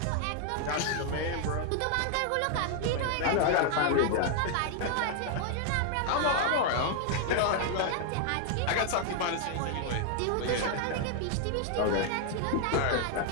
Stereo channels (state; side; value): different; both; correlation 0.00